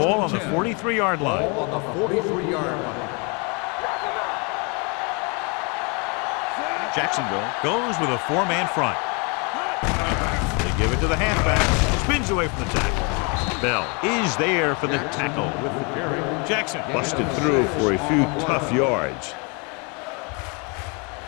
on the 43-yard line. Ball on the 43-yard line. Jacksonville goes with a 4-man front. They give it to the halfback. Spins away from the tackle. Bell is there for the tackle. Jackson busted through for a few tough yards.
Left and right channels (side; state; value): right; quieter; 32.9 dB